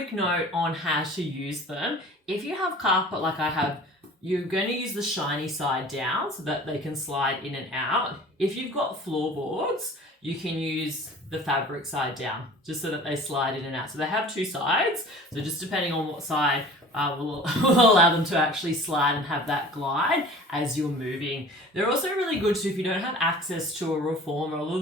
note on how to use them. If you have carpet like I have, you're going to use the shiny side down so that they can slide in and out. If you've got floorboards, you can use the fabric side down just so that they slide in and out. So they have two sides. So just depending on what side will allow them to actually slide and have that glide as you're moving. They're also really good too if you don't have access to a reformer. A lot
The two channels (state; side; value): normal; both; correlation 0.44